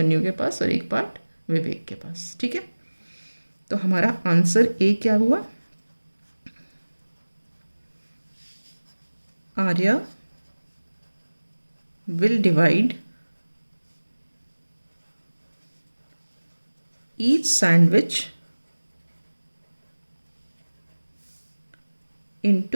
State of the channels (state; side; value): inverted; both; correlation -1.00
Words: के पास और एक पार्ट विवेक के पास। ठीक है, तो हमारा आंसर ए क्या हुआ? Arya will divide each sandwich